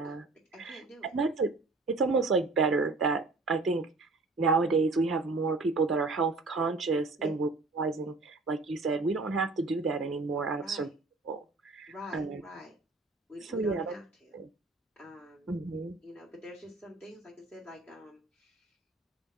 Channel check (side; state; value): left; quieter; 3.5 dB